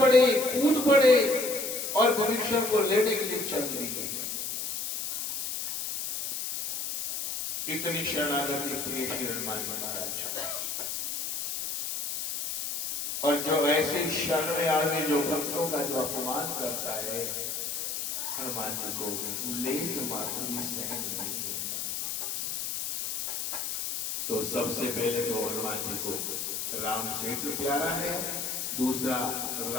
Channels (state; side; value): noise; left; hiss, 3 dB below the sound